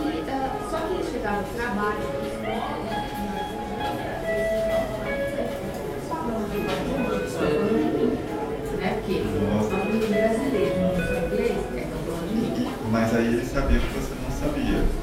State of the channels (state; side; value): identical; both; correlation 1.00